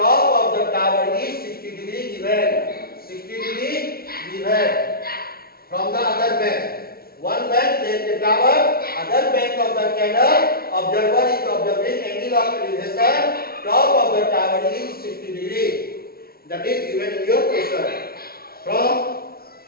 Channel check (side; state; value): right; late; 0.44 ms